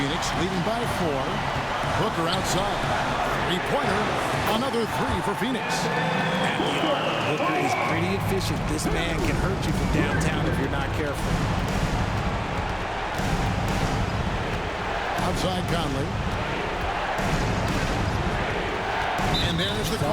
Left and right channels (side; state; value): both; identical; correlation 1.00